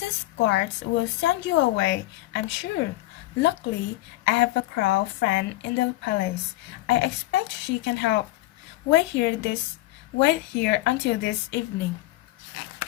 guards will send you away, I'm sure. Luckily, I have a crow friend in the palace. I expect she can help. Wait here until this evening.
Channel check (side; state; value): right; quieter; 17.6 dB